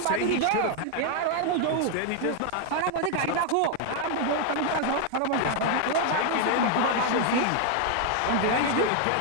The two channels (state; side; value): different; both; correlation 0.00